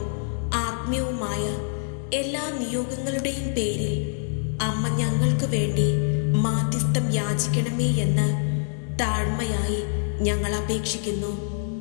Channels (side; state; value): right; silent; digital silence